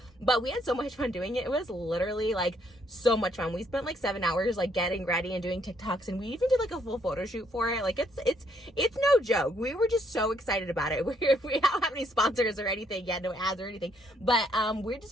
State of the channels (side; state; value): both; normal; correlation 0.70